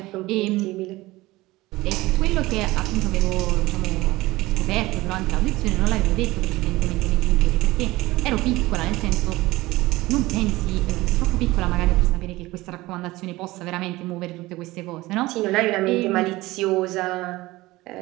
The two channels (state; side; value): quieter; left; 19.3 dB